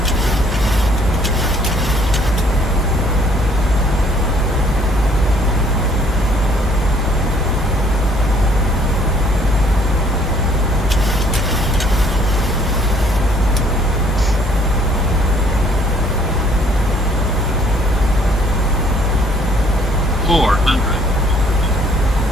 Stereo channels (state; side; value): normal; both; correlation 0.61